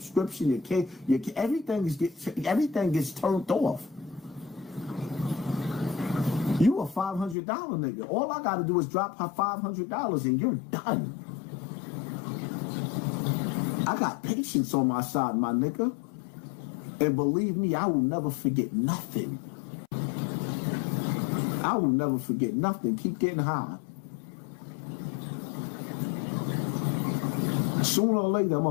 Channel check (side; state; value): right; drops out; at 7.4 s